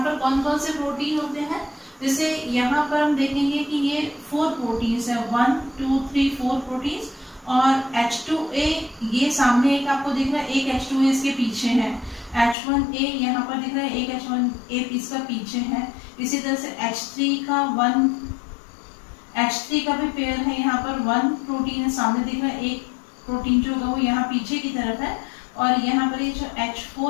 पर कौन कौन से प्रोटीन होते हैं, जैसे यहाँ पर हम देखेंगे कि ये 4 प्रोटीन्स है, 1 2 3 4 प्रोटीन्स। और H2A ये सामने एक आपको दिख रहा है, एक H2A इसके पीछे है, H1A यहाँ पर दिख रहा है, एक H1A इसका पीछे है। इसी तरह से H3 का भी पेयर है, यहाँ पर 1 प्रोटीन है सामने दिख रहा है, एक प्रोटीन जो होगा वो यहाँ पीछे की तरफ है। और यहाँ पर ये जो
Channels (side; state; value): right; drops out; at 12.6 s